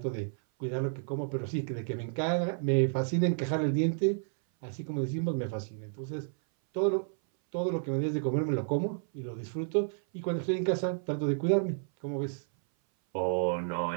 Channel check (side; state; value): left; silent; 57 dB below the other